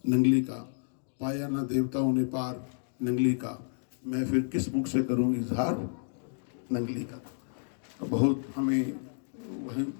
नंगली का पाया ना देवताओं ने पार नंगली का मैं फिर किस मुख से करूँगी इजहार नंगली का। बहुत हमें वहीं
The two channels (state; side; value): silent; right; digital silence